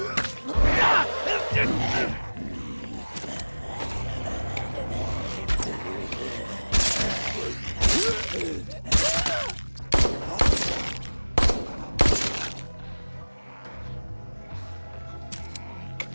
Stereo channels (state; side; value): inverted; both; correlation -1.00